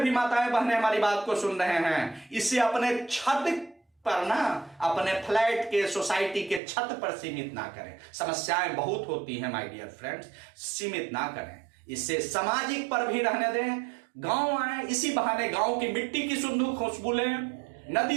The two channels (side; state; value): left; drops out; at 6.6 s